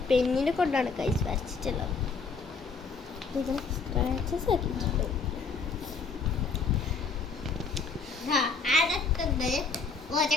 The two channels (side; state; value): right; quieter; 4.7 dB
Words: പെന്നിനെ കൊണ്ടാണ് കൈസ് വരച്ചിട്ടുള്ളത്. ഇത് സ്ക്രാച്ചസ് ആക്കിയിട്ടുണ്ട്.